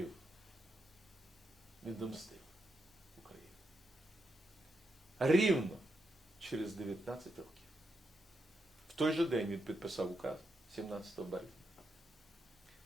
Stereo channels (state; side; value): normal; both; correlation 0.83